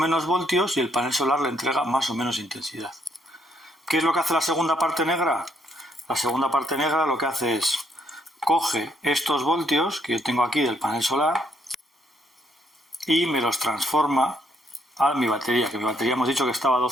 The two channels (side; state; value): both; normal; correlation 0.72